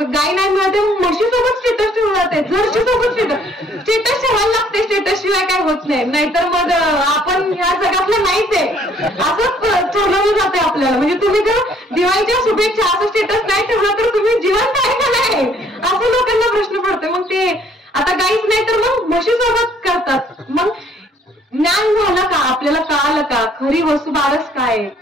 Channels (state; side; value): normal; both; correlation 0.62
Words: गाय नाही मिळते, म्हशी सोबत स्टेटस ठेवलं जाते, जर्सी सोबत स्टेटस ठेवायला लागते. स्टेटस शिवाय काय होत नाही. नाहीतर मग आपण ह्या जगातलं नाहीच आहे असं ठरवलं जाते आपल्याला. म्हणजे तुम्ही जर दिवाळीच्या शुभेच्छा असं स्टेटस नाही ठेवलं तर तुम्ही जिवंत आहे का नाही असं लोकांना प्रश्न पडतो. मग ते आता गाईच नाही तर मग म्हशी सोबत करतात. मग ज्ञान झालं का? आपल्याला कळालं का खरी वसुबारस काय?